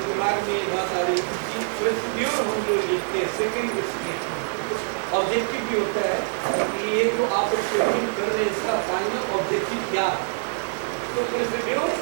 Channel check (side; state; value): left; silent; digital silence